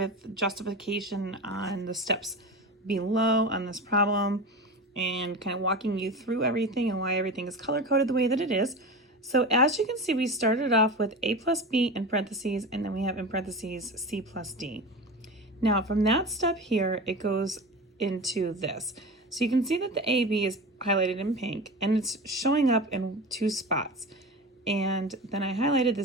justification on the steps below on this problem and kind of walking you through everything and why everything is color-coded the way that it is. So as you can see, we started off with a plus b in parentheses, and then we have in parentheses c plus d. Now from that step here, it goes into this. So you can see that the AB is highlighted in pink and it's showing up in two spots. And then I highlighted the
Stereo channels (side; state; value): both; normal; correlation 0.28